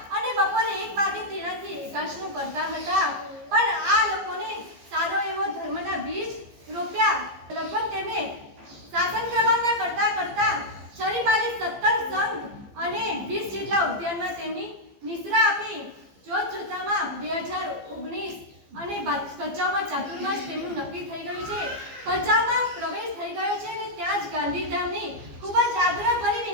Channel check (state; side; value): late; left; 15 ms